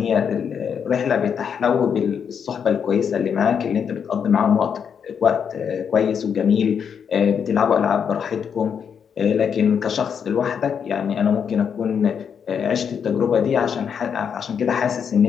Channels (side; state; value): right; quieter; 7.3 dB